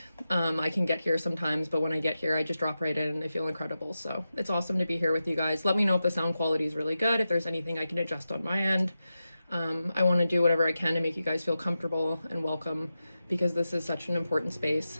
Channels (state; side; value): inverted; both; correlation -0.91